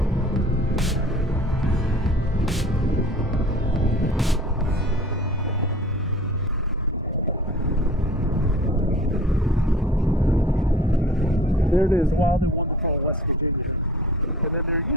There it is, Wild and Wonderful, West Virginia. And then there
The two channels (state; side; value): normal; both; correlation 0.45